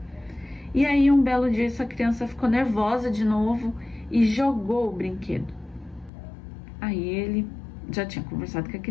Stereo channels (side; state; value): right; drops out; at 6.1 s